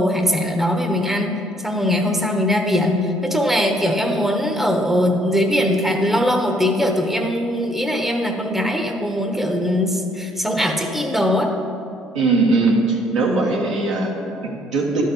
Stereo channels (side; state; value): both; normal; correlation 0.66